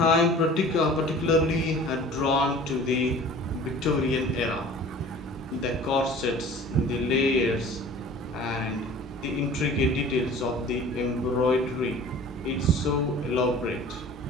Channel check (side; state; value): both; normal; correlation 0.44